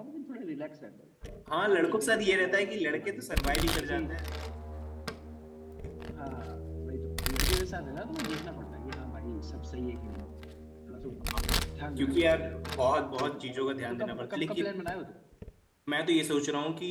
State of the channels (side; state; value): both; identical; correlation 1.00